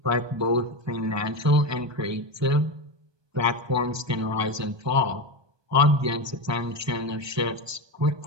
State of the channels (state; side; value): late; left; 1.2 ms